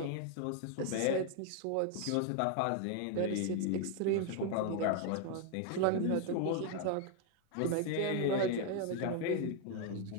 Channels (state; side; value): different; both; correlation 0.00